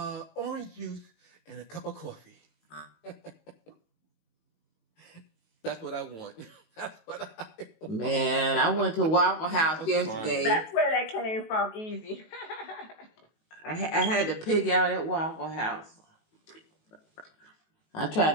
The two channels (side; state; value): right; late; 19 ms